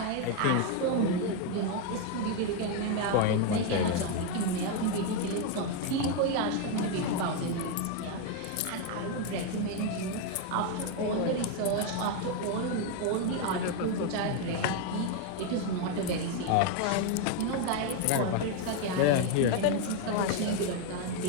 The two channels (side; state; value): both; different; correlation 0.01